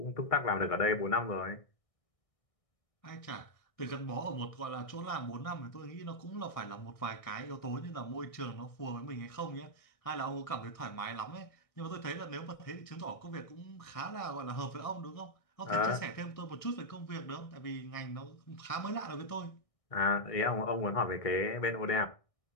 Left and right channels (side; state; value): right; late; 1.6 ms